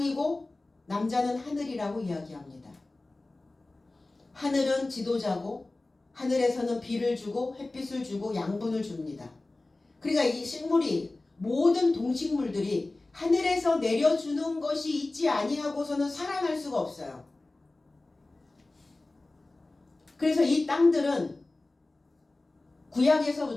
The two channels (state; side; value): quieter; right; 3.0 dB